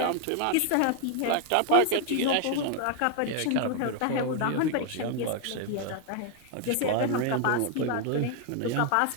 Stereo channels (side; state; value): both; different; correlation 0.00